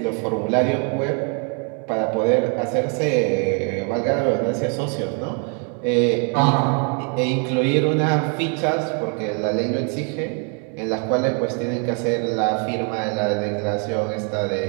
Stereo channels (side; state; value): left; quieter; 39.1 dB